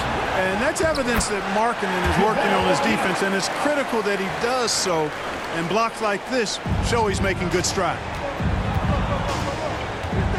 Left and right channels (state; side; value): identical; both; correlation 1.00